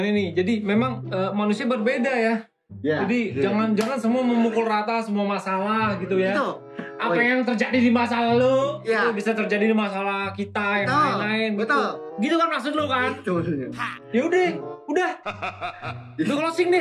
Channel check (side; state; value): both; identical; correlation 1.00